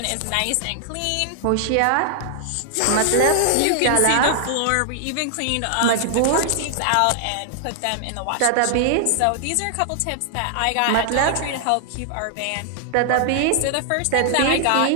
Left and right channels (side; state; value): both; different; correlation 0.00